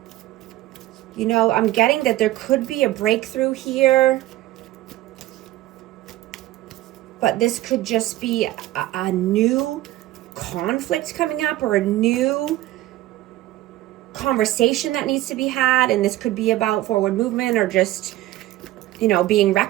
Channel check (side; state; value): left; quieter; 15.8 dB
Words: You know, I'm getting that there could be a breakthrough here. But this could just be a new conflict coming up, or a new conversation that needs to be had. And this could be about forward movement, or just, you know, being